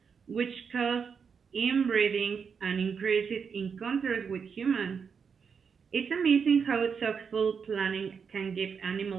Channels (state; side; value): quieter; left; 6.2 dB